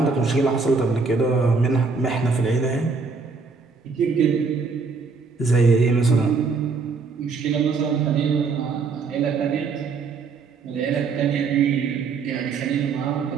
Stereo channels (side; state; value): left; quieter; 4.7 dB